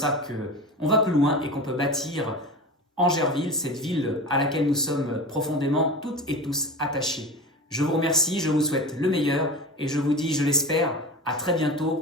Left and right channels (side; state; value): both; normal; correlation 0.30